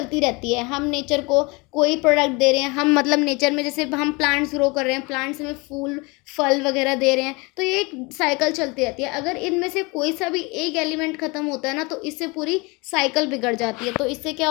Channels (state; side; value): quieter; right; 27.1 dB